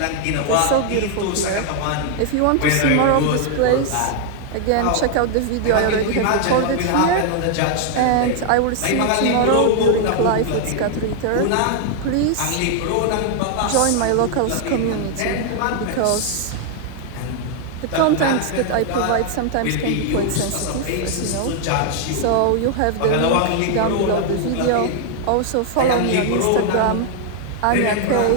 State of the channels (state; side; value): different; both; correlation 0.00